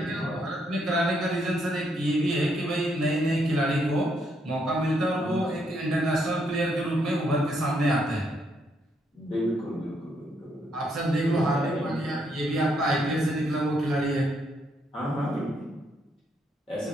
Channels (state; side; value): normal; both; correlation 0.75